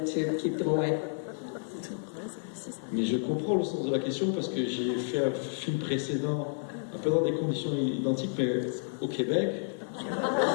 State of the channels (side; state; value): right; silent; 57 dB below the other